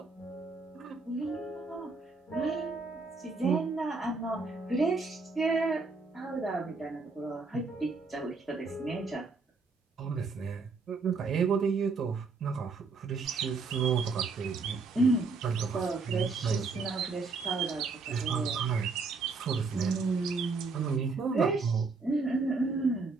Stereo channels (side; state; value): left; quieter; 4.2 dB